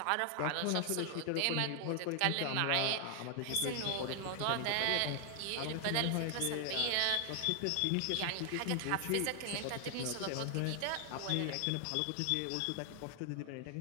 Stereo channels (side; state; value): both; different; correlation 0.00